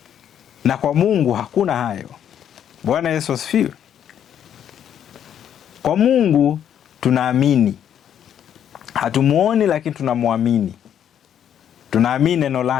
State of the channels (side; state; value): right; quieter; 9.5 dB